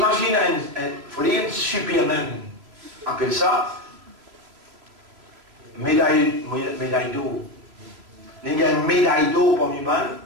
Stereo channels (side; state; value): left; late; 3.1 ms